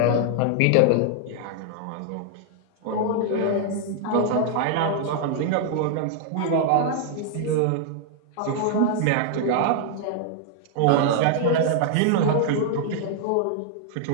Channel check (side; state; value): both; different; correlation 0.00